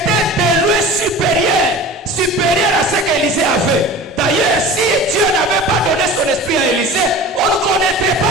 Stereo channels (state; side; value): normal; both; correlation 0.37